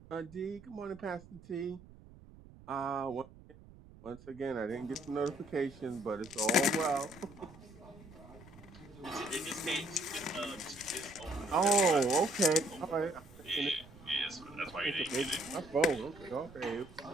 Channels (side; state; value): right; noise; rumble, 20 dB below the sound